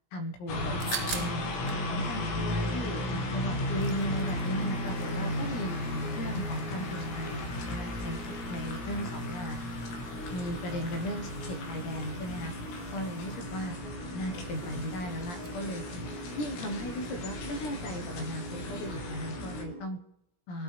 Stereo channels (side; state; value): right; late; 17 ms